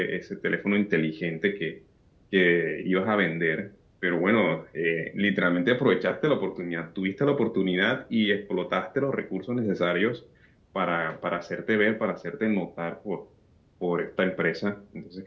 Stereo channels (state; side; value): identical; both; correlation 1.00